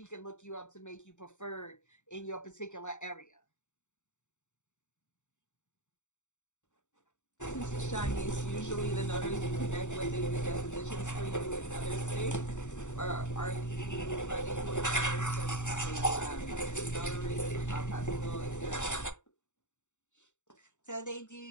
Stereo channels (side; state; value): right; late; 0.84 ms